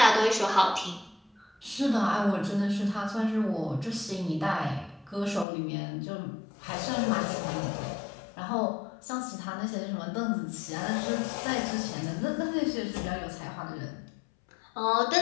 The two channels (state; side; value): drops out; right; at 5.5 s